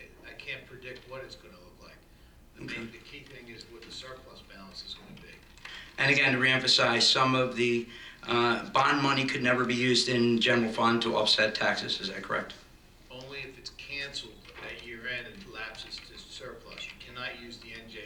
I can't predict what it's going to look like. The key thing is what the surplus balance is going to be. And again, to reemphasize, some of the bond money could never be used in general fund to offset taxes, is that correct? Only if it's canceled at year end and lapses to surplus. You cannot use the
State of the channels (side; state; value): both; identical; correlation 1.00